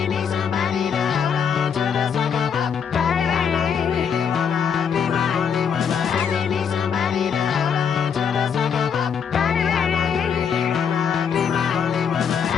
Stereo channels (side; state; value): right; quieter; 7.2 dB